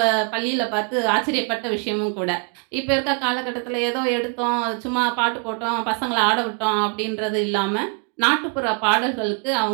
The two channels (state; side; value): quieter; left; 35.3 dB